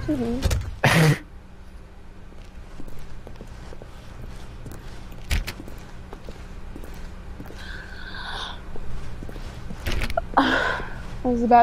hear me? I was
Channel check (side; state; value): both; identical; correlation 1.00